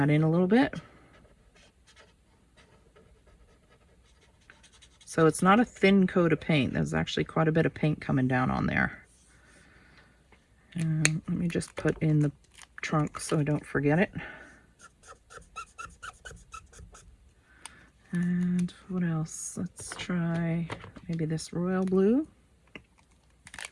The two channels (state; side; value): identical; both; correlation 1.00